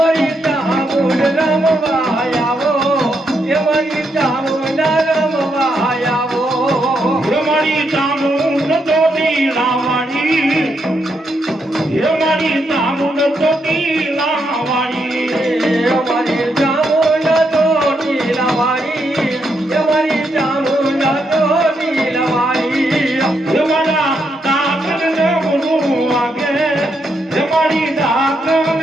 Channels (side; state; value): both; normal; correlation 0.79